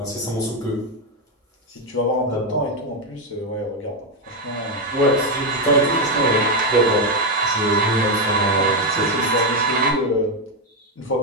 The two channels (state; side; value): normal; both; correlation 0.05